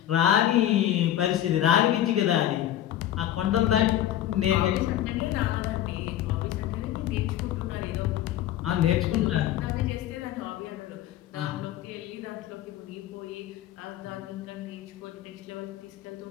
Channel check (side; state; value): right; quieter; 12.2 dB